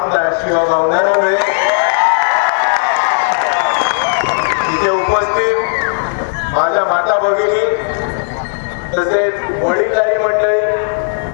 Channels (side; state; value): right; silent; digital silence